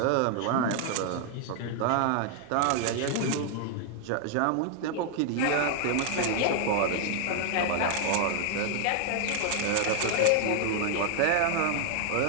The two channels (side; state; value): both; different; correlation 0.00